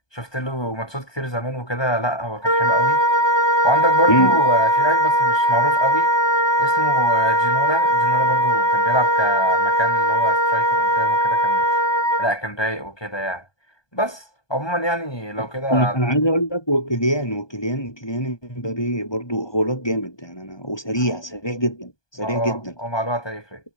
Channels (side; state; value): right; late; 1.2 ms